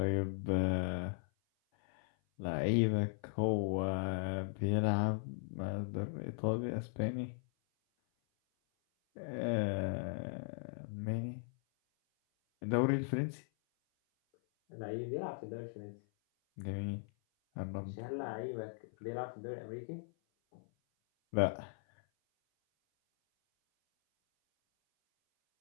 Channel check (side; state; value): right; silent; 52 dB below the other